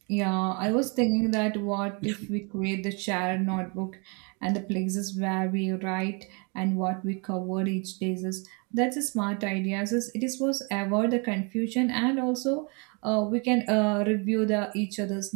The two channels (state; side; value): quieter; left; 33.2 dB